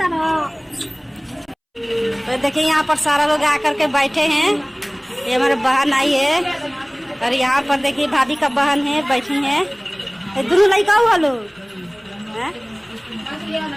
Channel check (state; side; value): identical; both; correlation 1.00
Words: तो देखिए यहाँ पर सारा लोग आकर के बैठे हैं। ये हमारे बहन आई है और यहाँ पर देखिए भाभी का बहन है बैठी है। दोनों लड़का हुआ लोग